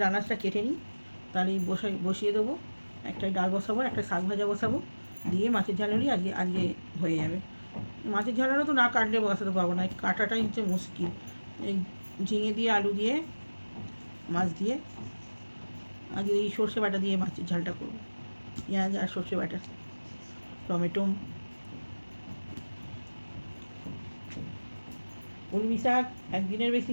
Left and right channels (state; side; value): inverted; both; correlation -1.00